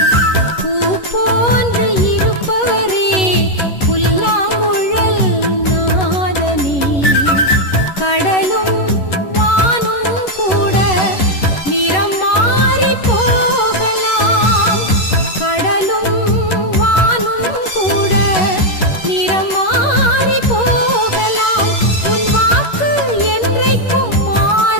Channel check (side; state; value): right; late; 11 ms